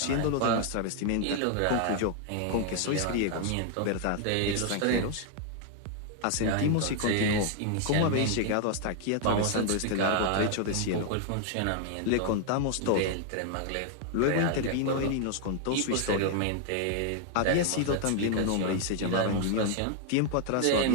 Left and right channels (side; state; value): both; different; correlation 0.00